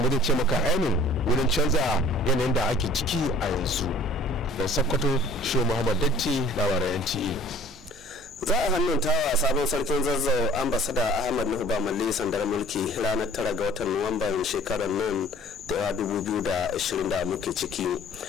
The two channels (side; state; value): both; normal; correlation 0.50